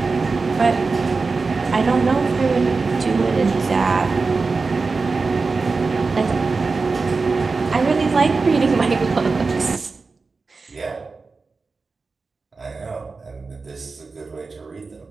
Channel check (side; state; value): left; quieter; 4.2 dB